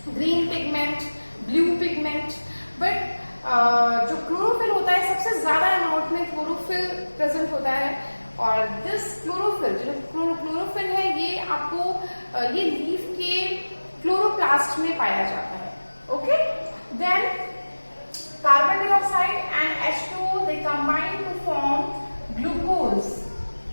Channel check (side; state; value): both; inverted; correlation -1.00